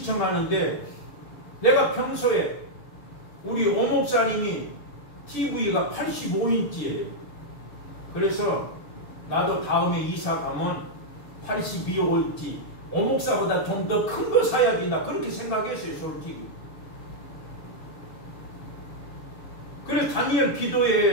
내가 평소에 우리 오목사님이 TV가 85인치예요. 그래서 나도 다음에 이사 가면 82인치 오목사보다 좀 더 큰 거 사야지 나 그렇게 생각했어요. 솔직히. 그래서 다니엘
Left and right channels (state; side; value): late; right; 7.0 ms